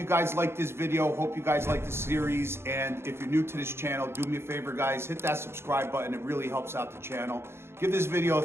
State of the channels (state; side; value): late; left; 0.12 ms